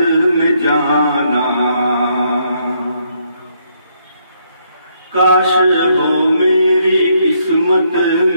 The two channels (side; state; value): both; inverted; correlation -0.72